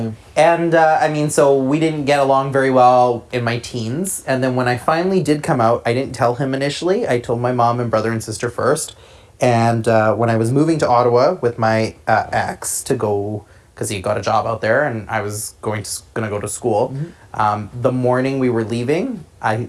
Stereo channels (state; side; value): identical; both; correlation 1.00